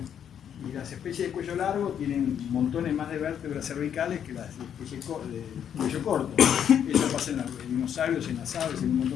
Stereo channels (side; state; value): right; quieter; 8.9 dB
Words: Y las especies de cuello largo tienen montones más de vértebras cervicales que las especies de cuello corto. Eso pasa en los dinosaurios, en las aves, en un